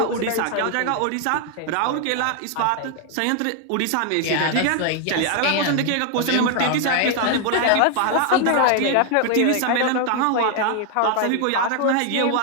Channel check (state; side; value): different; both; correlation 0.00